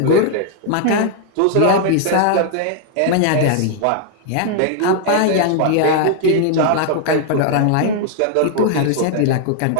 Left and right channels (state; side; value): different; both; correlation 0.00